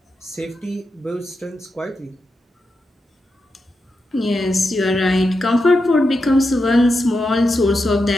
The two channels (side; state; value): both; normal; correlation 0.87